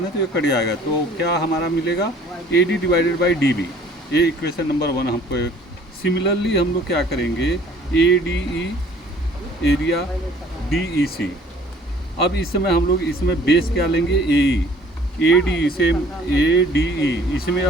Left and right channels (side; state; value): both; normal; correlation 0.54